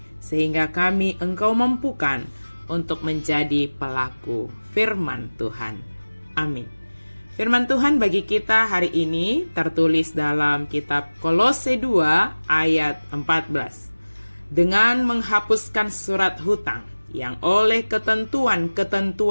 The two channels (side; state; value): both; inverted; correlation -1.00